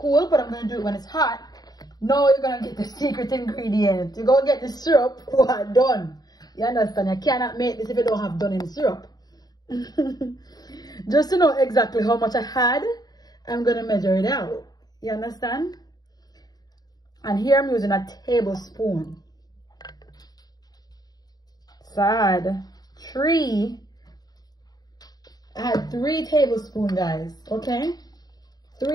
but I'm going to do it when it's hot. Now you're going to get the secret ingredient. You're going to get the syrup done. You understand? You cannot make this if you don't have done in syrup. Just to know exactly how much I had, I'm going to measure it out. You understand? And here I'm using a tablespoon. So I had 3 tablespoons, guys. Okay?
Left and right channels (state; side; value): late; right; 0.19 ms